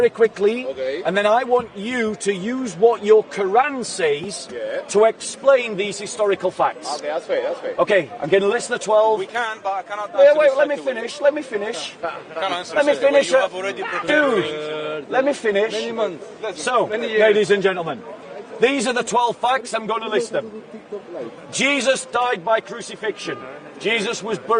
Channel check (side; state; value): both; identical; correlation 1.00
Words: quickly, and then I want you to use what your Quran says to explain these historical facts. Okay, that's fair, that's fair. Okay, I'm going to list the 12. We can, but I cannot Wait, answer wait, this let me straight away. finish, let me finish. Let me finish. You have already prepared Dude, let me finish. So, ladies and gentlemen, these are the 12 facts, I'm going to list them. Jesus died by crucifixion. Jesus was